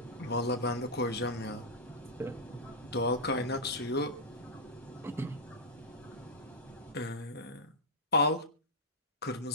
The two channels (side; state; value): both; normal; correlation -0.09